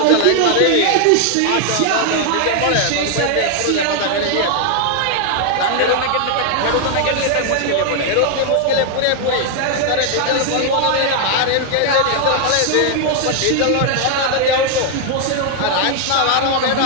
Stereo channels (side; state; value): both; different; correlation 0.00